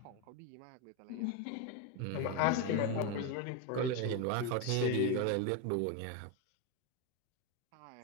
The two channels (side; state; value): both; different; correlation 0.03